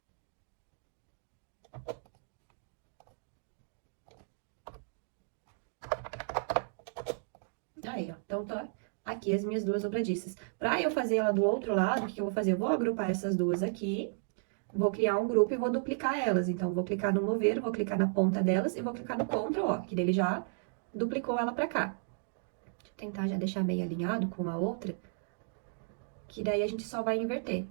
Aí, ó. Então, tá aqui as minhas duas dobradiças. Pra eu fazer ela do outro lado, o que eu vou fazer? Eu vou agrupar essas duas aqui, vou criar um grupo e vou duplicar elas. Então, vou clicar no mover, vou clicar na ponta delas e vou clicar no Ctrl, ó, que ele já duplicou ela pra cá. Deixa eu tentar já deixar meio alinhado com a outra, que daí a gente só vai inverter.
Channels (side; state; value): left; silent; digital silence